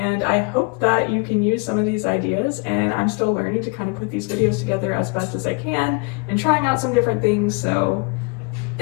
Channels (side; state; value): right; quieter; 30.2 dB